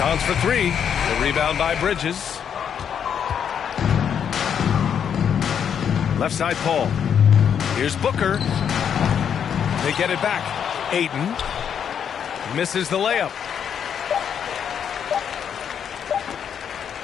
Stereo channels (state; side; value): quieter; right; 8.1 dB